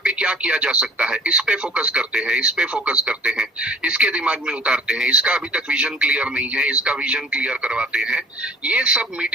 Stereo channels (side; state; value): both; normal; correlation 0.48